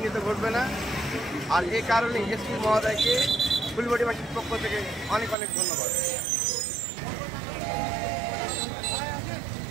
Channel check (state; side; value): drops out; left; at 5.4 s